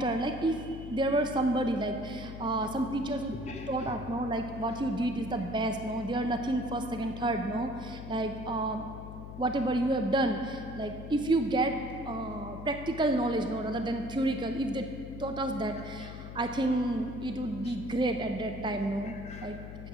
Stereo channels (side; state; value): left; noise; hum, 10 dB below the sound